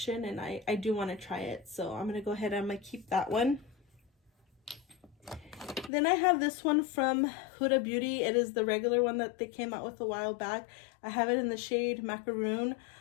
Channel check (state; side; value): drops out; right; at 5.9 s